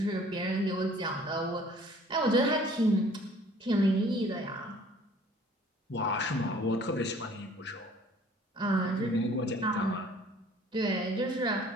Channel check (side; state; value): both; normal; correlation 0.53